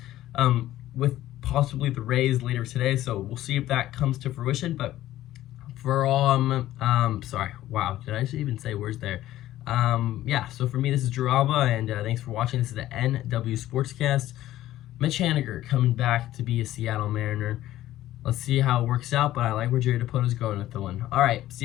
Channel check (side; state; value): right; quieter; 14.3 dB